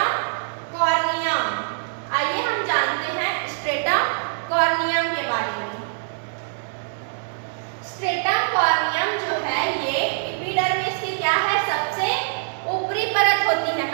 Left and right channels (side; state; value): left; silent; 63 dB below the other